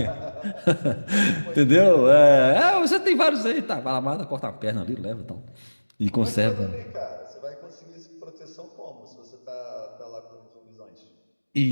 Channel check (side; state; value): both; inverted; correlation -1.00